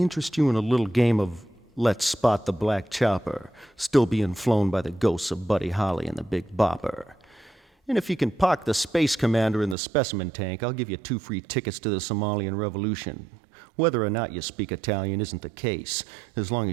you in a little game of Let's Spot the Black Chopper, still being flown by the ghosts of Buddy Holly and the Big Bopper? And if you can park the Space Commander in the specimen tank, I'll give you 2 free tickets to the Somalian Revolution. Whether or not you speak Italian isn't the case, as long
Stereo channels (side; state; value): left; drops out; at 9.8 s